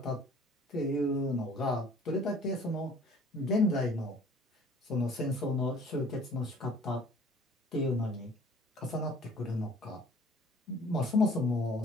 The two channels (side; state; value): both; normal; correlation 0.52